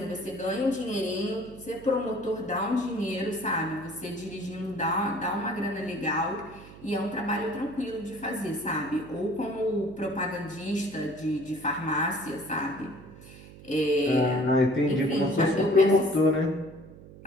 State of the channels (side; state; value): right; noise; hum, 18 dB below the sound